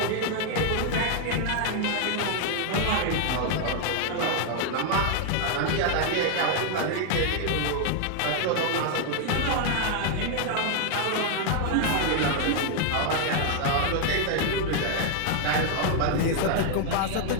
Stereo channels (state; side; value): different; both; correlation 0.00